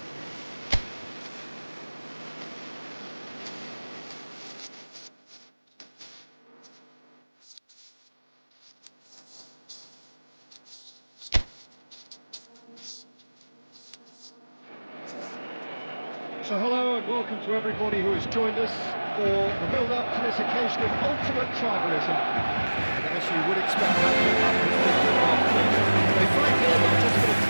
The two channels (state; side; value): inverted; both; correlation -1.00